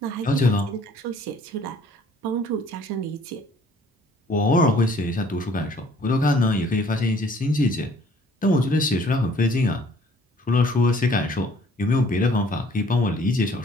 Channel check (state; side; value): normal; both; correlation 0.57